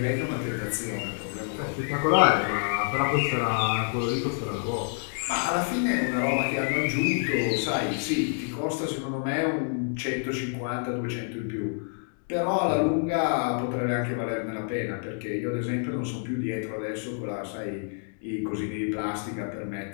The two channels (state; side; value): silent; right; 59 dB below the other